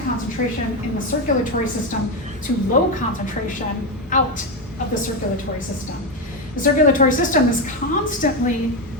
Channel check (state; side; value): normal; both; correlation 0.10